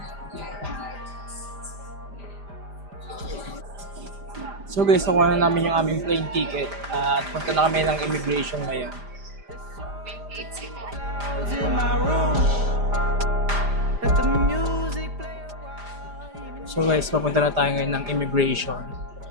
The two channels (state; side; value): late; left; 5.0 ms